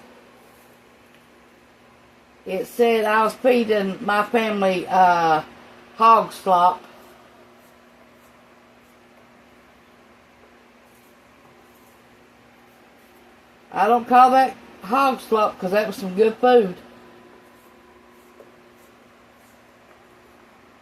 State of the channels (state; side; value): identical; both; correlation 1.00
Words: It said I was feeding my family hog slop. I don't call that hog slop because that was some good food.